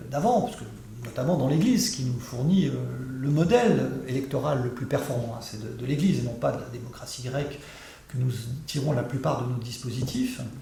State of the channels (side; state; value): both; identical; correlation 1.00